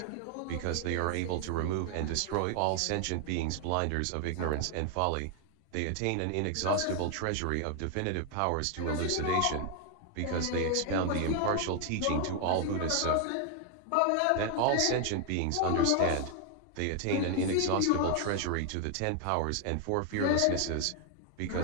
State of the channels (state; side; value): different; both; correlation 0.01